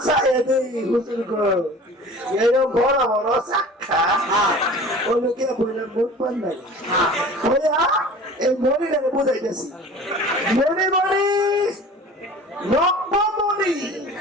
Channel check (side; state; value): both; normal; correlation 0.42